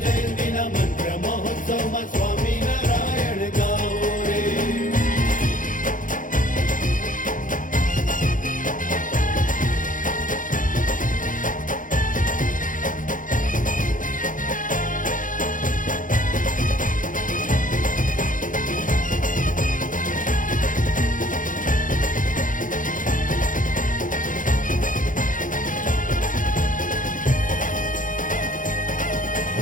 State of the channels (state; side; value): late; right; 0.38 ms